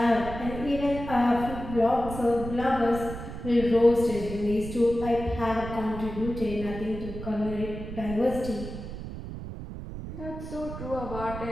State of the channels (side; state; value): right; noise; rumble, 9 dB below the sound